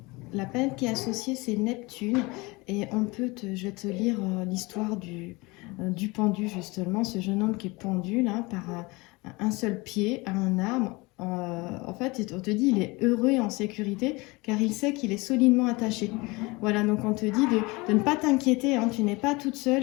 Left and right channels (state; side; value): quieter; right; 24.4 dB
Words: La planète qui est associée, c'est Neptune. Et je vais te lire l'histoire du pendu, justement. Ce jeune homme qui est pendu là, par un seul pied à un arbre. En fait, on te dit il est heureux et en sécurité car il sait qu'il est solidement attaché. Voilà, donc on te dit de ne pas t'inquiéter, hein. Tu n'es pas toute